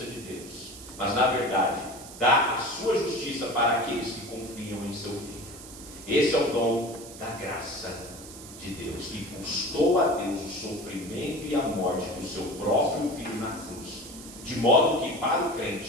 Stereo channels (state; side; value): noise; right; hiss, 15 dB below the sound